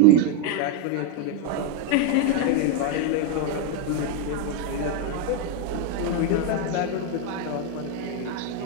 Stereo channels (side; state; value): both; different; correlation 0.02